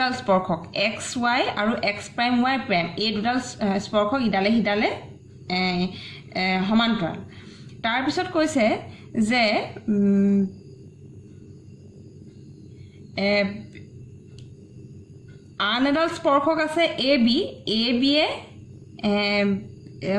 স্পৰ্শক xy আৰু x', এই দুডাল স্পৰ্শক ইডালে হিডালে সমান্তৰাল তাৰ পিছত কৈছে যে আন এডাল স্পৰ্শক আছে AB এ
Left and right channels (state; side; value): identical; both; correlation 1.00